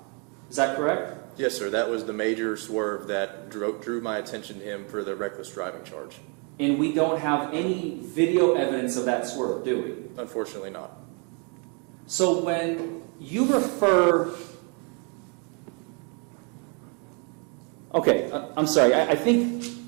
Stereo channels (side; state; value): left; quieter; 36.2 dB